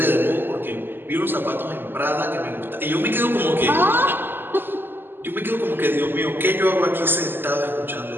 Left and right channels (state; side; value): late; left; 0.097 ms